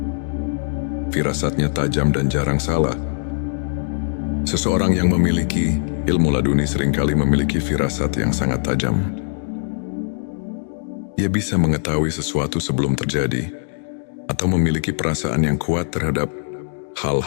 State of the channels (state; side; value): silent; right; digital silence